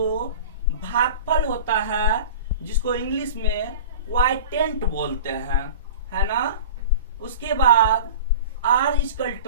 भागफल होता है, जिसको इंग्लिश में क्वाइटेंट बोलते हैं, है ना। उसके बाद R =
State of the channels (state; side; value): inverted; both; correlation -0.36